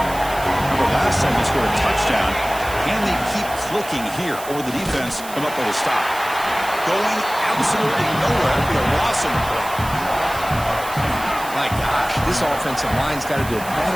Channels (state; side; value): noise; right; hiss, 14 dB below the sound